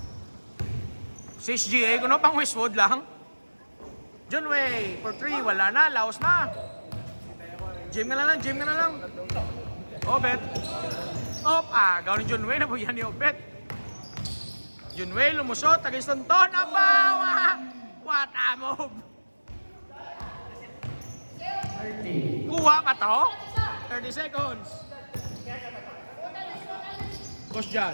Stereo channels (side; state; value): both; inverted; correlation -1.00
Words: Si SGA, kuno pang Westwood lang. John Way, for 3, wala na, laos na. Gym na lang, gym na lang. Obet. Op, agaw ni John Way, nabuyan ni Obet. John Way, lumusot, tagistonton, abaw! What a move! 30. Kuha pa to? 30 seconds. Boss